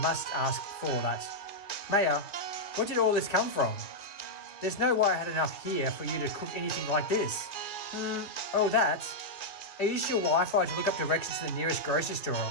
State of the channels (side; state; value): right; late; 2.6 ms